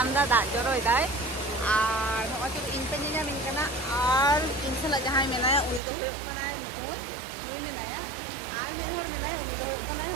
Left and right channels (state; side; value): drops out; left; at 5.8 s